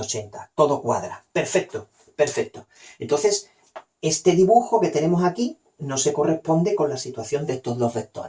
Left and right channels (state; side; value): identical; both; correlation 1.00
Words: Todo cuadra. Perfecto, perfecto. Entonces, este dibujo que tenemos aquí no se corresponde con la situación de estos dos